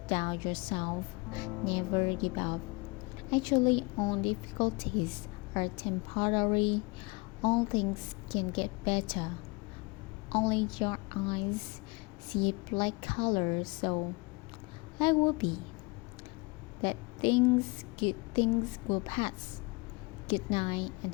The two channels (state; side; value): quieter; right; 27.2 dB